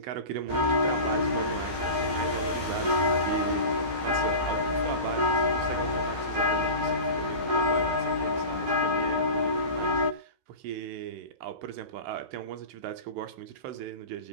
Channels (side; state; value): left; late; 15 ms